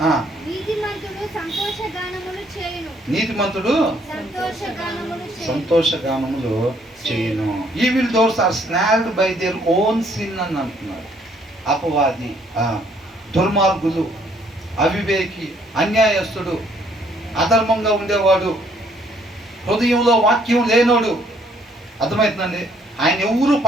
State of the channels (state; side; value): normal; both; correlation 0.65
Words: నీతిమంతుడు సంతోషగానములు చేయను. Evil doers are snared by their own sin అని అంటున్నారు. అపవాది, దుర్మార్గులు, అవివేకి, అన్యాయస్తుడు, అధర్మంగా ఉండేవాడు, హృదయంలో వాక్యం లేనోడు. అర్థమవుతుందండి? ఆయన ఎవరు